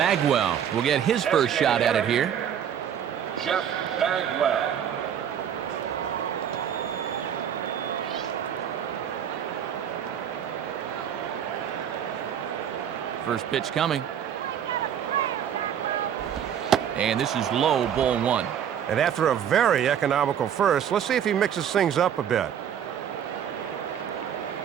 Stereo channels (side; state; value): left; quieter; 9.0 dB